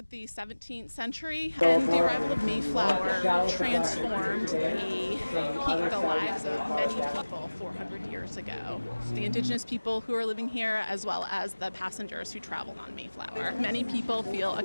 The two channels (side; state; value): both; inverted; correlation -1.00